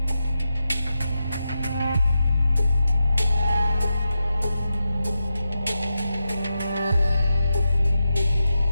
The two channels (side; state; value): both; inverted; correlation -0.89